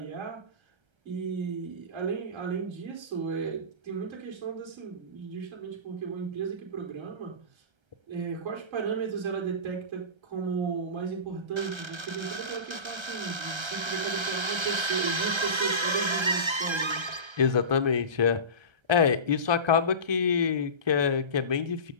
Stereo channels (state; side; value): late; left; 1.3 ms